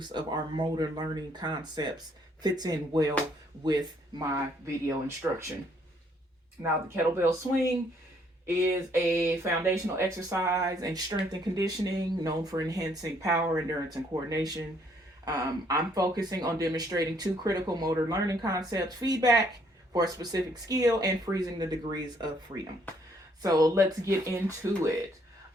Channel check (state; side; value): normal; both; correlation 0.67